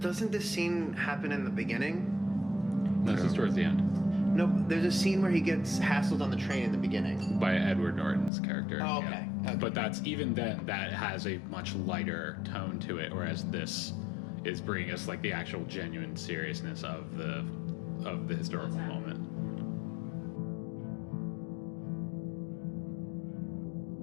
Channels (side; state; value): right; drops out; at 8.3 s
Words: doesn't this scene happen in the beginning? This is towards the end No, there's a scene where he gets hassled on the train in the beginning. by Edward Norton's character. Oh, okay. Okay. But that's even then that has a much lighter tone to it, whereas this is bringing us like the actual genuine seriousness of the historical moment.